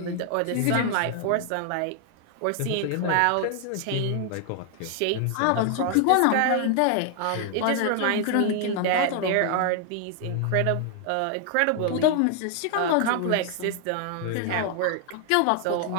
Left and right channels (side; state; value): both; different; correlation 0.00